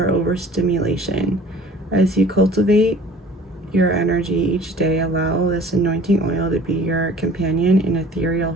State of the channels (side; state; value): both; normal; correlation 0.49